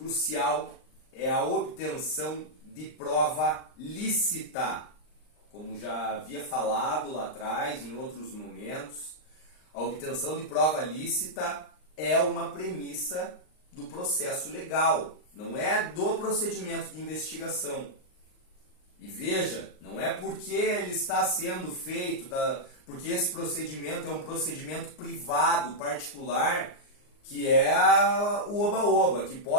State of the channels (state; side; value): late; right; 39 ms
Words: é a obtenção de prova lícita. Como já havia falado lá atrás, em outros momentos, a obtenção de prova lícita é uma premissa do processo legal, não é do procedimento de investigação. E veja, não é porque ele está sendo feito, porque esse procedimento é um procedimento privado, particular, que é o oba-oba, que